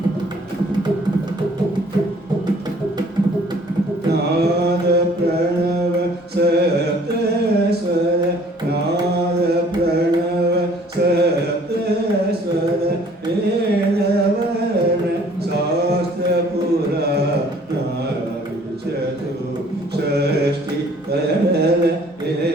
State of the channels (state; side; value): normal; both; correlation 0.56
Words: ನಾದ ಪ್ರಣವ ಸಪ್ತ ಸ್ವರ ನಾದ ಪ್ರಣವ ಸಪ್ತ ಸ್ವರ ವೇದವರ್ಣ ಶಾಸ್ತ್ರ ಪುರಾಣ ಚತು ಷಷ್ಠಿ ಕಡಲ